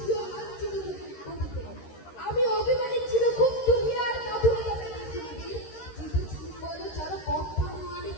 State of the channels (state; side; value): late; right; 13 ms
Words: লাঞ্ছিত বুকে আমি অভিমানী ছিল খুব দুনিয়ার কাঁধুরে পৃথিবীর চিত্তচুম্বন চর কম্পন আমি